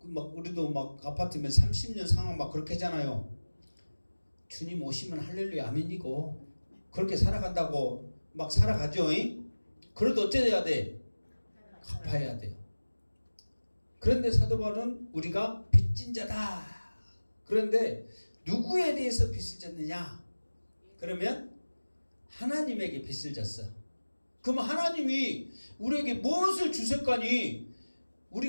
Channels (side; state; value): both; inverted; correlation -1.00